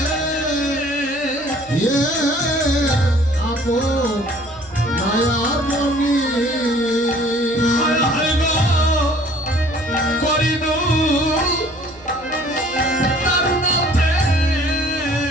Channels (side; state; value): right; noise; hum, 25 dB below the sound